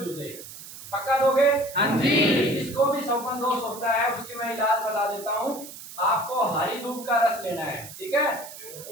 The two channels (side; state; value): right; noise; hiss, 14 dB below the sound